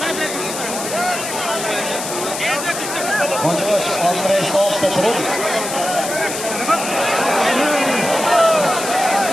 Hocabaş, Andrei Slav'da turib.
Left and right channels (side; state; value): left; noise; hiss, 6 dB below the sound